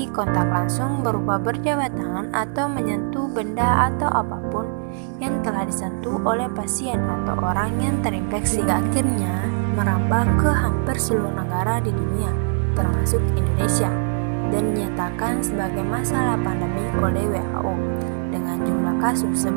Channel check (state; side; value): silent; left; 64 dB below the other